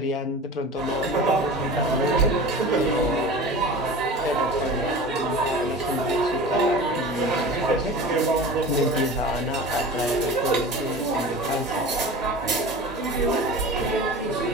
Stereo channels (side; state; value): both; normal; correlation 0.35